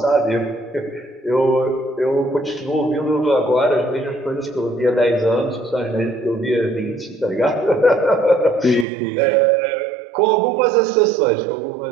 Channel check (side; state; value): left; drops out; at 8.8 s